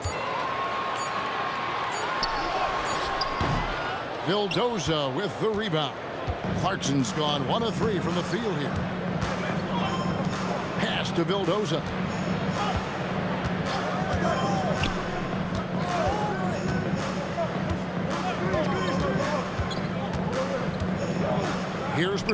Vildoza with the rebound. Clarkson's gone 1 of 3 from the field here. Pass to Vildoza. Here's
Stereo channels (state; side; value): identical; both; correlation 1.00